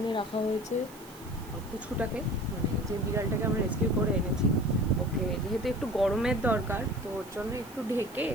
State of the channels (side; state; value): right; noise; hiss, 21 dB below the sound